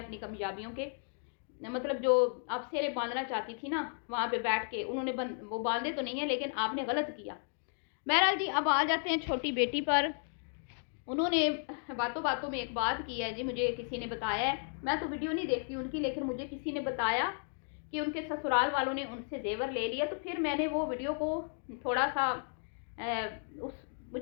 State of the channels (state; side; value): silent; right; 55 dB below the other